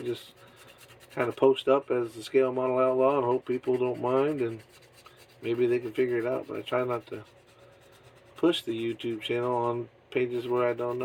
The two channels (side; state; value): both; identical; correlation 1.00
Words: kind of post up as the Scale Model Outlaw and hope people don't mind, and maybe they can figure it out. But I try not to push the YouTube channel on pages where I don't